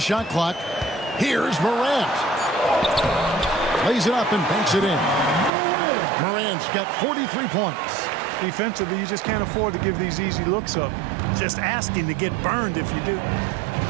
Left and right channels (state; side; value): drops out; left; at 5.5 s